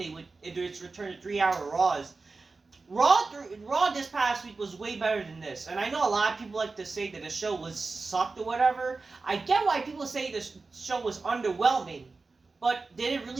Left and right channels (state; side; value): quieter; left; 3.9 dB